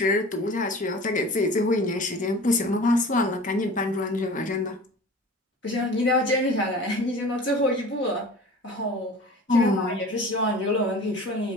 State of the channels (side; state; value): both; normal; correlation 0.40